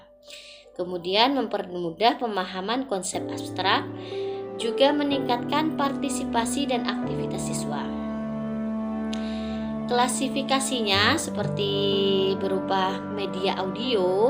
Kemudian mempermudah pemahaman konsep abstrak, juga meningkatkan partisipasi dan aktivitas siswa. Klasifikasinya seperti berupa media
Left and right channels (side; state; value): both; identical; correlation 1.00